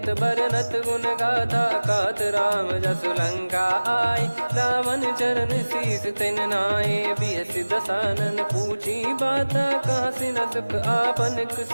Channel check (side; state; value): both; inverted; correlation -1.00